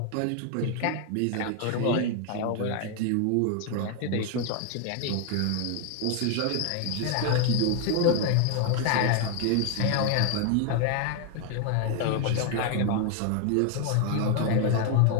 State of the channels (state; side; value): different; both; correlation 0.00